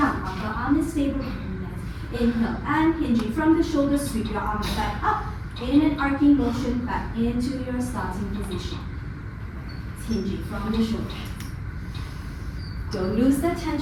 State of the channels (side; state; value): both; identical; correlation 1.00